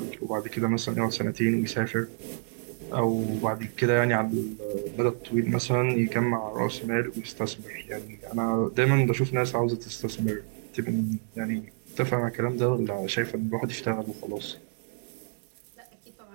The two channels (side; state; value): left; silent; digital silence